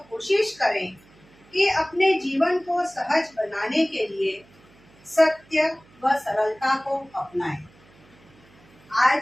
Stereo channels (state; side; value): noise; right; hum, 28 dB below the sound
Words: कोशिश करें कि अपने जीवन को सहज बनाने के लिए सत्य व सरलता को अपनाएं।